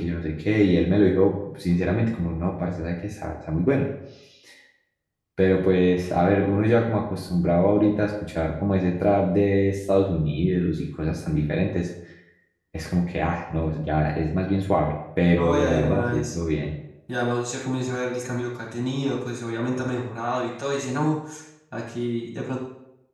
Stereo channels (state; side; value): identical; both; correlation 1.00